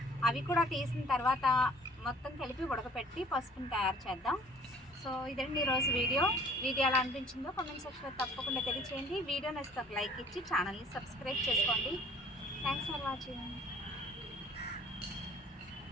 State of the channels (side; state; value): both; normal; correlation 0.53